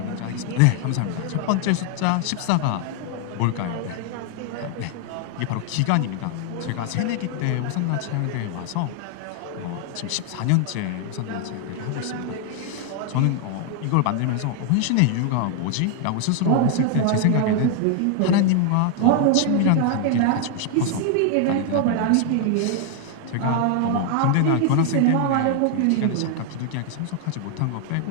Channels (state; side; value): different; both; correlation 0.00